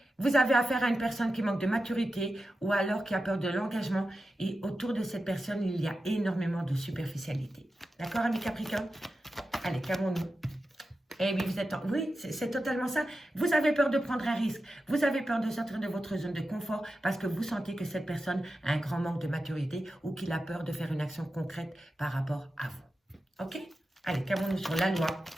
vous avez affaire à une personne qui manque de maturité ou alors qui a peur de l'engagement. Et autour de cette personne, il y a énormément de superficialité. D'accord, ami Capricorne? Allez, qu'avons-nous? Eh oui, vous êtes oui, c'est totalement ça. Vous avez peur de prendre un risque. Vous avez peur de sortir de votre zone de confort parce que vous sentez que cette personne a un grand manque de maturité ou qu'il a peur de faire une action concrète par rapport à vous. Ok? Allez, qu'avons-nous sur la loi?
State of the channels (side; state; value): both; normal; correlation 0.91